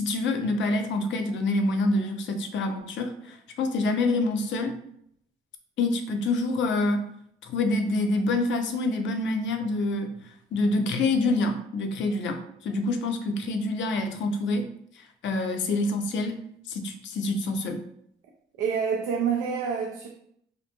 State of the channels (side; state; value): both; normal; correlation 0.57